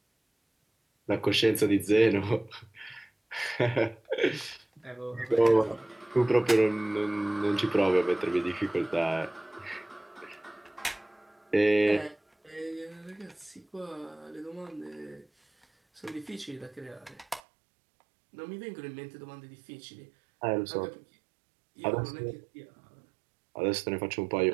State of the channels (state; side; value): drops out; left; at 17.4 s